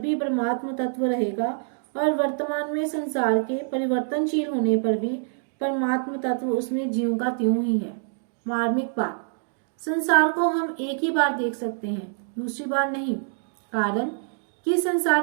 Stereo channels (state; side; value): silent; left; digital silence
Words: परमात्म तत्व रहेगा और वर्तमान में संसार के परिवर्तनशील होने पर भी परमात्म तत्व उसमें ज्यों का त्यों ही है। मार्मिक बात, संसार को हम एक ही बार देख सकते हैं, दूसरी बार नहीं, कारण कि